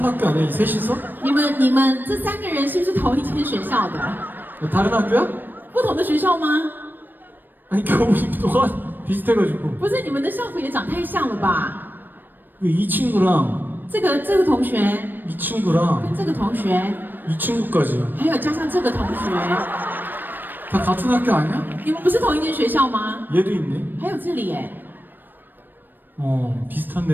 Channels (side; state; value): left; late; 0.092 ms